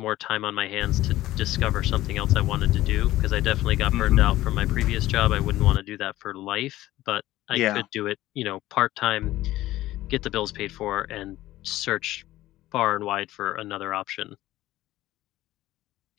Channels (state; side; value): quieter; right; 15.7 dB